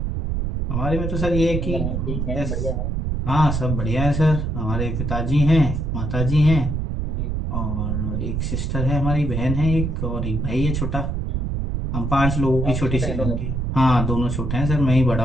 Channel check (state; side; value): noise; right; rumble, 1 dB below the sound